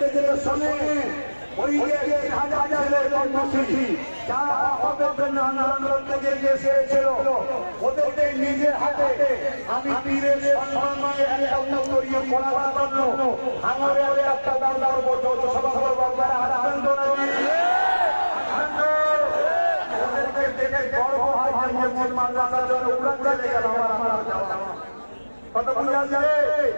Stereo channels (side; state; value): both; inverted; correlation -1.00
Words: যেতে শোনে ওই যে হাজারের কর্মসূচি যারা আন্দোলন থেকে এসেছিল ওদেরকে নিজের হাতে আমি পীরের সম্মানে একটা উত্তরীয় করার জন্য আমার একটা দাম করবো যৌথ সভা করবো আপনারা আসবেন তো নাকি? ওদেরকে দেখে গর্ব হয় যে মুসলমান রাজার জন্য উড়া চলে গেল আমার কত বুঝা যায়